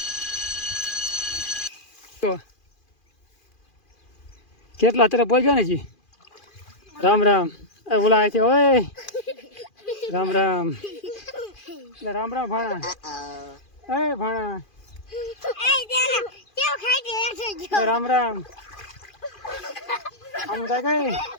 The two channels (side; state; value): right; late; 2.4 ms